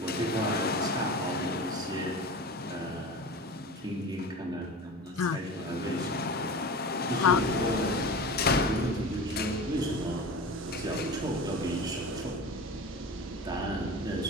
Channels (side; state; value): both; normal; correlation 0.31